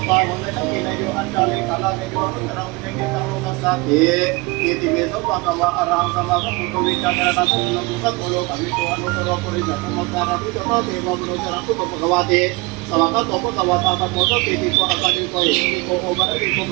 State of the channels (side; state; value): left; quieter; 25.4 dB